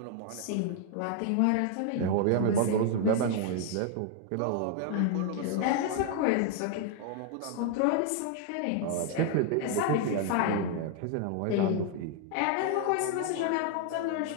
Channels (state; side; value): different; both; correlation 0.00